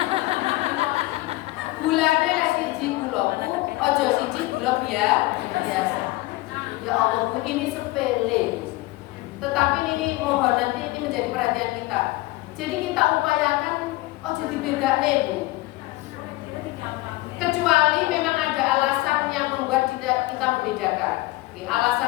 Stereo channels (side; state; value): right; quieter; 19.8 dB